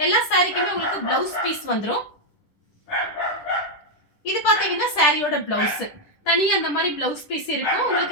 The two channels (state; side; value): late; right; 10 ms